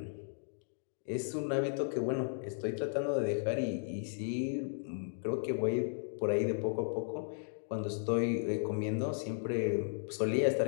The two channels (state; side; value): silent; right; digital silence